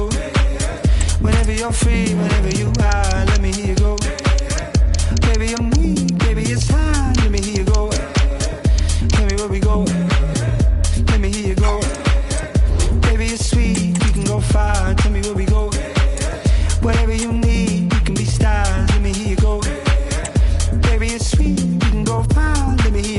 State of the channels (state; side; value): identical; both; correlation 1.00